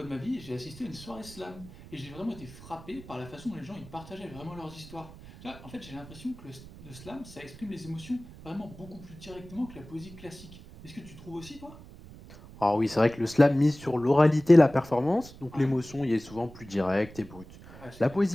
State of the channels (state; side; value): noise; right; rumble, 18 dB below the sound